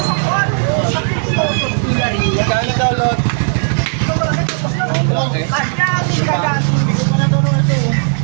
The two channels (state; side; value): silent; left; digital silence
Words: Kano daw, Lot?